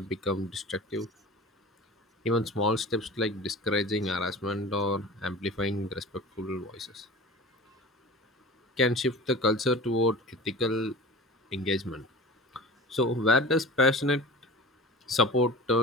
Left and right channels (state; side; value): normal; both; correlation 0.36